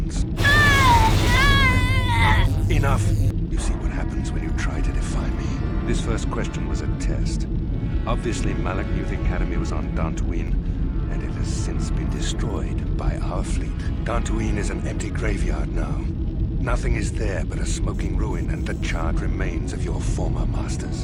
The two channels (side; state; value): both; identical; correlation 1.00